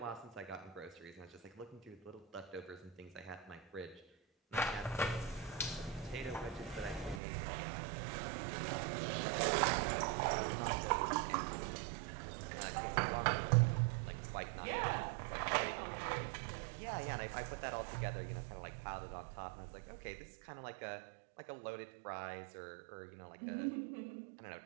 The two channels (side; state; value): left; drops out; at 7.2 s